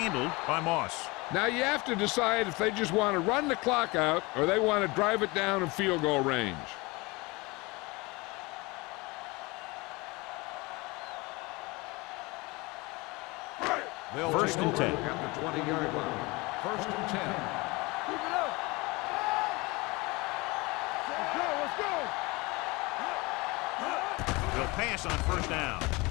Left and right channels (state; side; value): quieter; right; 24.6 dB